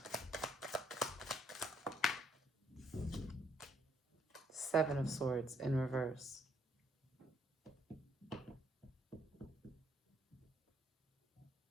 Seven of Swords in reverse.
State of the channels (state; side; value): normal; both; correlation 0.69